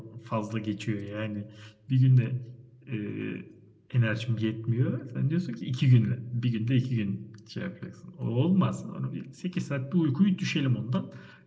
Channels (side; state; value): both; identical; correlation 1.00